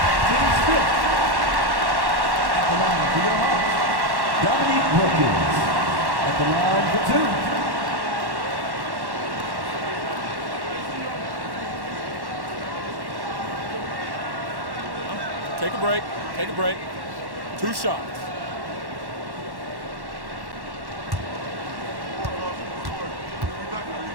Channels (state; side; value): late; left; 1.1 ms